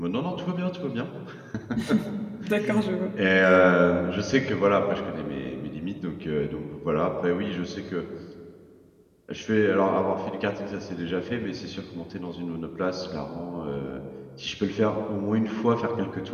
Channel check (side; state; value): both; identical; correlation 1.00